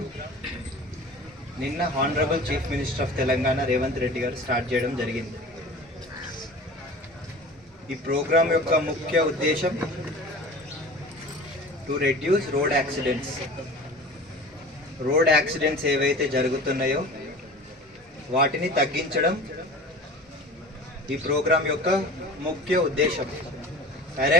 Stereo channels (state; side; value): normal; both; correlation 0.39